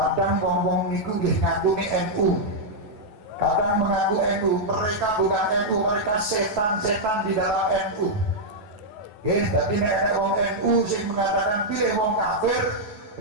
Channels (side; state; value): left; late; 9.2 ms